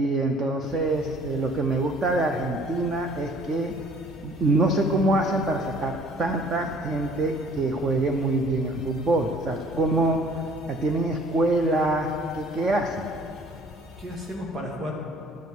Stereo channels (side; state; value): both; normal; correlation 0.55